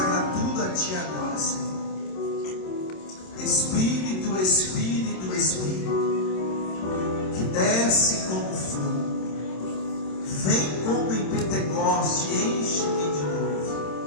tudo a Ti agora, Senhor. Espírito, Espírito, Espírito, que desce como fogo, vem como em Pentecoste, enche-me de novo.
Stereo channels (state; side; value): late; right; 27 ms